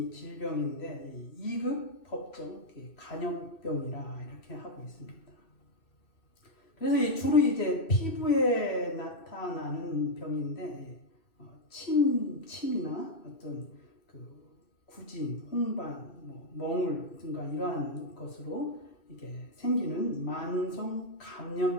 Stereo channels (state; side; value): late; right; 2.6 ms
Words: 이 질병인데 2급 법정 간염병이라 이렇게 하고 있습니다. 그래서 주로 이제 피부에 나타나는 병인데 침이나 어떤 구진, 홍반, 멍울 등과 이러한 것으로 이게 생기는 만성